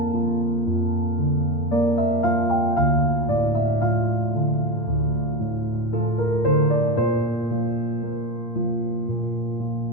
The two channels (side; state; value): right; late; 8.7 ms